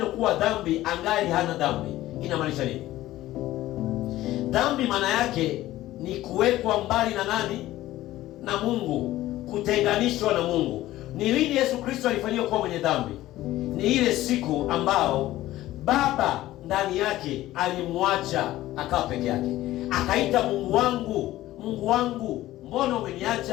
kuwa dhambi angali hana dhambi? Inamaanisha nini? Dhambi maana yake ni kuwekwa mbali na nani? Na Mungu, kutenganishwa na Mungu. Ni lini Yesu Kristo alifanywa kuwa mwenye dhambi? Ni ile siku ambao Baba ndani yake alimwacha akawa peke yake, akaita Mungu wangu, Mungu wangu, mbona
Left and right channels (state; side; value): quieter; right; 15.5 dB